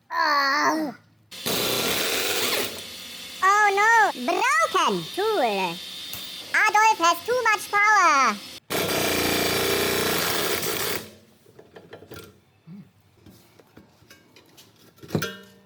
Oh. Oh no, broken tool. Adolf has too much power.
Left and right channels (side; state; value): both; identical; correlation 1.00